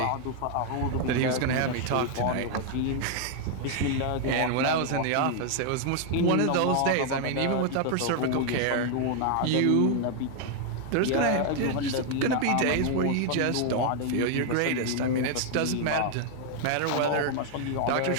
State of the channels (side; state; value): both; different; correlation 0.00